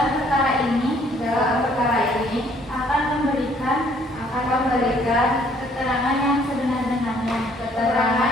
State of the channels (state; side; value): normal; both; correlation 0.62